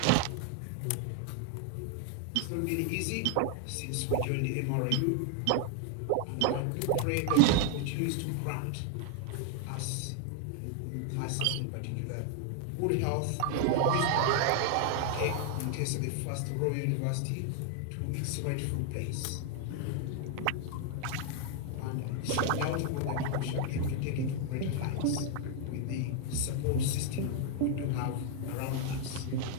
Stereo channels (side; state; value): both; different; correlation 0.00